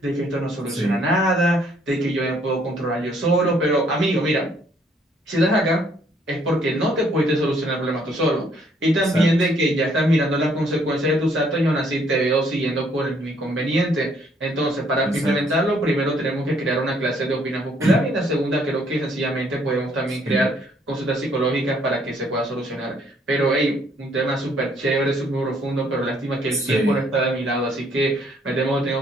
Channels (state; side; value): normal; both; correlation 0.66